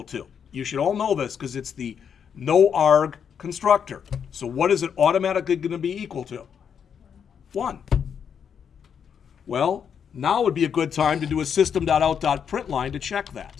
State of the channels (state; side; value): quieter; right; 7.5 dB